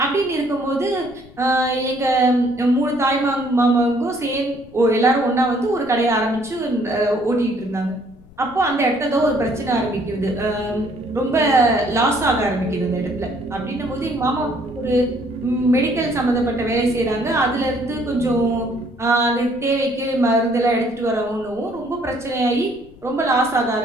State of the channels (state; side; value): noise; left; rumble, 24 dB below the sound